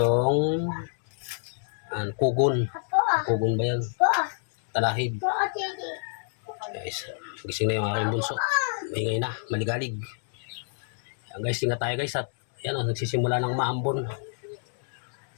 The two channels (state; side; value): silent; right; digital silence